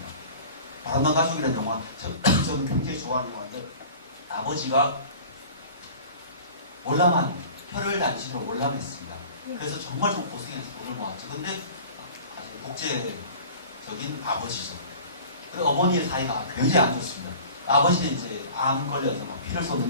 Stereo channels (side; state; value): both; inverted; correlation -0.42